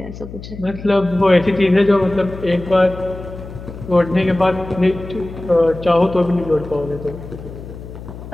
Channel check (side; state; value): left; noise; hum, 13 dB below the sound